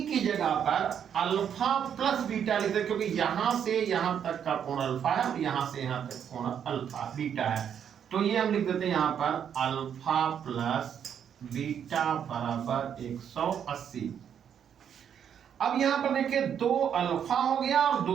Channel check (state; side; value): quieter; left; 8.5 dB